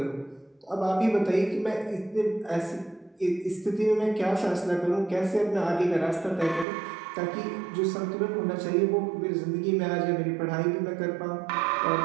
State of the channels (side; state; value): left; drops out; at 6.7 s